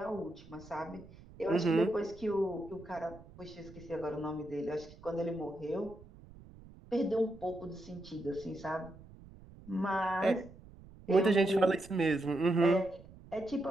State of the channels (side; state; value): right; noise; rumble, 20 dB below the sound